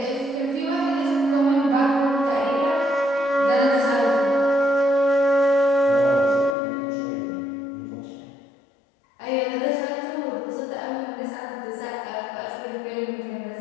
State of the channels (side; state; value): right; drops out; at 6.6 s